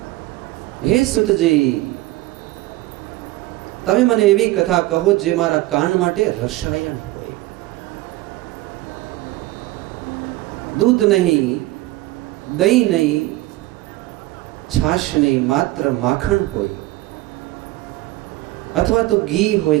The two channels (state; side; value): quieter; left; 18.2 dB